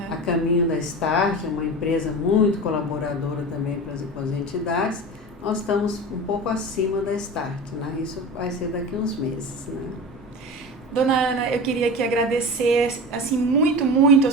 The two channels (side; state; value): both; normal; correlation 0.29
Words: A caminho da Start, uma empresa muito colaboradora também para as entidades. Nós estamos um pouco acima da Start, né? Isso vai ser daqui a uns meses, né? Dona Ana, eu queria aqui agradecer assim, muito a